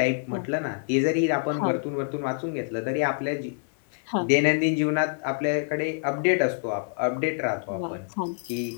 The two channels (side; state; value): right; silent; 57 dB below the other